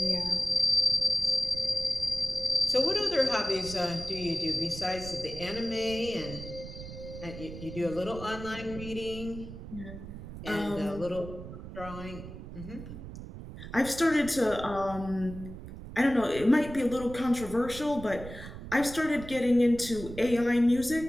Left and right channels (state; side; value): noise; right; rumble, 12 dB below the sound